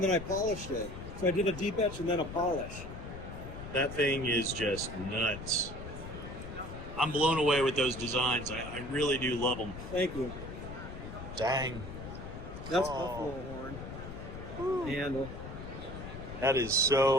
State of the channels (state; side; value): noise; left; rumble, 10 dB below the sound